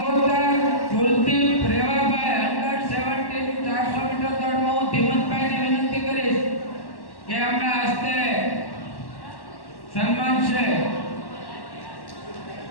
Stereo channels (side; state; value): right; late; 1.1 ms